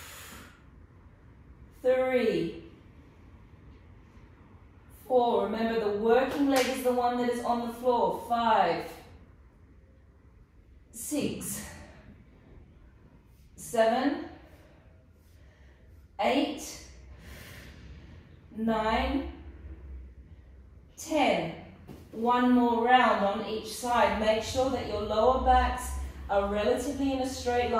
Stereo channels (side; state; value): both; identical; correlation 1.00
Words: 3, 4. Remember, the working leg is the one that is on the floor. 5, 6, 7, 8, 9, 10. One more round on each side. Make sure that your lower backs are relatively in a straight